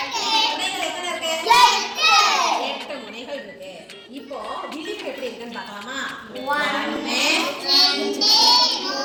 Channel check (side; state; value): both; identical; correlation 1.00